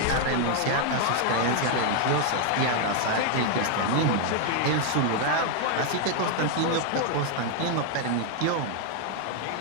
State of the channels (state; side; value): different; both; correlation 0.00